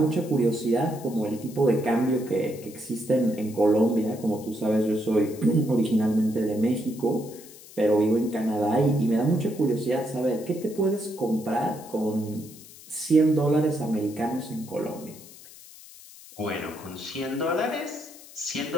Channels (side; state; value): left; noise; hiss, 19 dB below the sound